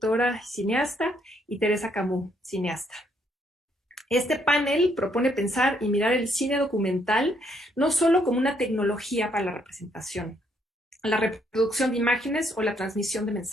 cineasta, y Teresa Camus, cineasta. Este panel propone pensar y mirar el cine documental no solo como una tecnología para la representación, la reproducción de imágenes o la transmisión de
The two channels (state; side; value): normal; both; correlation 0.71